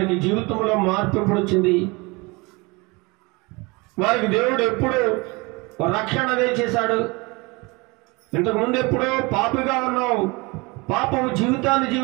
జీవితంలో మార్పు ఎప్పుడు వచ్చింది? వారికి దేవుడు ఎప్పుడు రక్షణ చేశాడు? ఇంతకుముందు ఎప్పుడో పాపిగా ఉన్నావు, పాపము జీవితాన్ని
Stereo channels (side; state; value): left; quieter; 26.0 dB